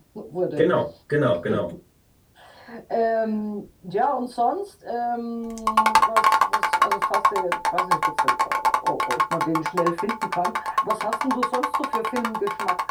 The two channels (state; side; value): identical; both; correlation 1.00